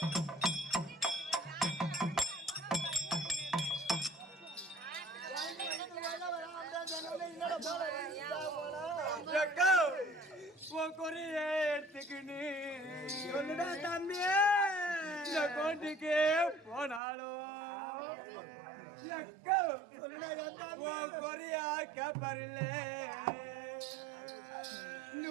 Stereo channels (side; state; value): left; drops out; at 17.0 s